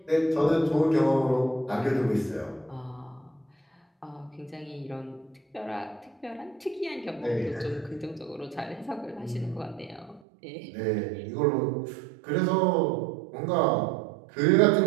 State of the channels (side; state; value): left; drops out; at 10.2 s